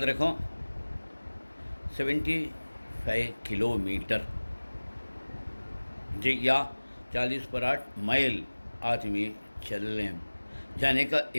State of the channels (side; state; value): both; inverted; correlation -1.00